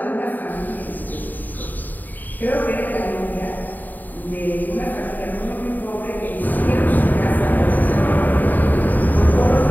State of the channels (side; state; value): right; late; 0.086 ms